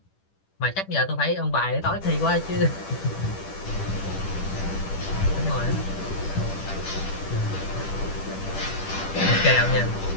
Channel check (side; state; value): right; late; 10 ms